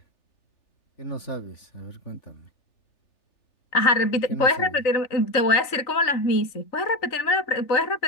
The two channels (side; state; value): right; late; 3.4 ms